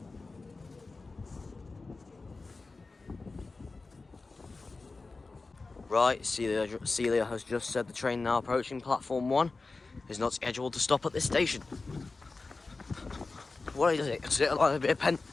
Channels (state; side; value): quieter; right; 3.8 dB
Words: Right, Celia has just said the train now approaching platform 1 is not scheduled to stop at this station. What is it? Is it likely to be